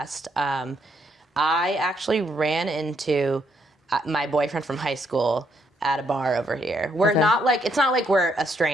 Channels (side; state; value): both; normal; correlation 0.73